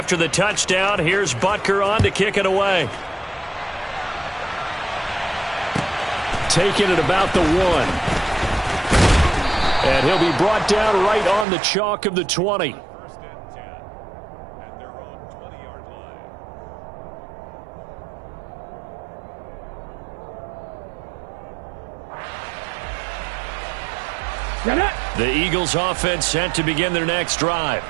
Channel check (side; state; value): left; drops out; at 11.5 s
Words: the touchdown, here's Butker on to kick it away. Taking it about the 1. And he'll be brought down right on the chalk of the 20. The Eagles offense set to begin their next drive.